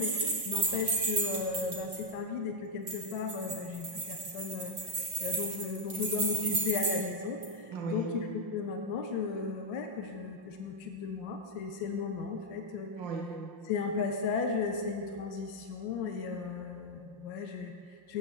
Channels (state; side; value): late; left; 5.7 ms